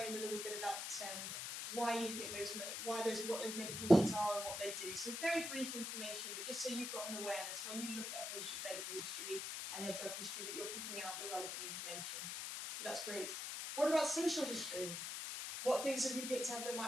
a little bit about why you think what those medications are and what they do. So very brief information, but just so you've got an awareness when you look at a patient's medical history and their drug history that you're picking out the relevant information. So that's great. What about social history? What things have you picked up that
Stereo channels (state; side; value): noise; left; hiss, 4 dB below the sound